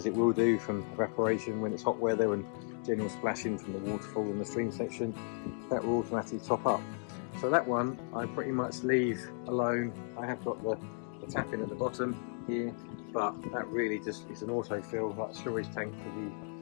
it will do from evaporation when it's hot weather and general splashing from the waterfall in the stream section, that will automatically top up. So that one I pretty much leave alone. I have got the tap in at the bottom here, but that really just is an autofill, like a storage tank for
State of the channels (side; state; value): right; silent; 55 dB below the other